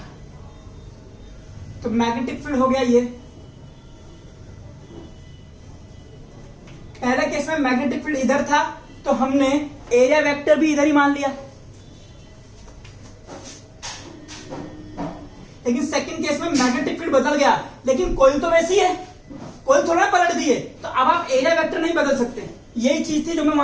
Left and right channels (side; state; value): both; identical; correlation 1.00